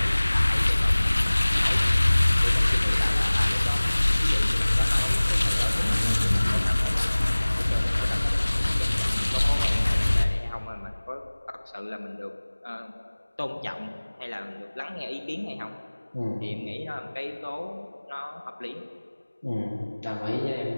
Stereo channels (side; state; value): both; inverted; correlation -1.00